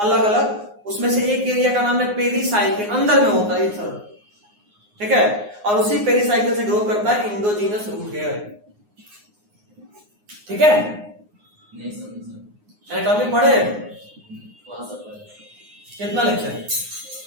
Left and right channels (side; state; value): left; late; 9.6 ms